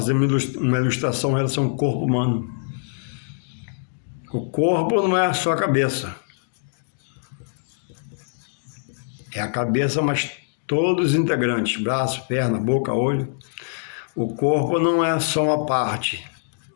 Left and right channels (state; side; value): silent; right; digital silence